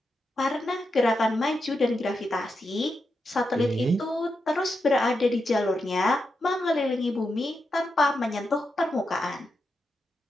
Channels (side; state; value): both; normal; correlation 0.86